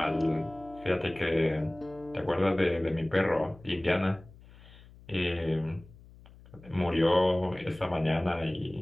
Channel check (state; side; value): noise; left; hum, 22 dB below the sound